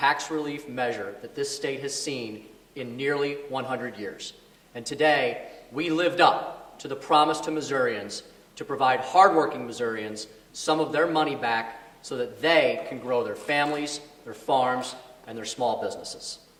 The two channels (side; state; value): both; identical; correlation 1.00